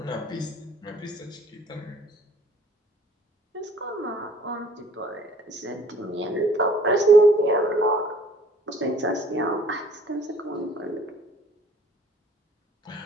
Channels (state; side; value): normal; both; correlation 0.55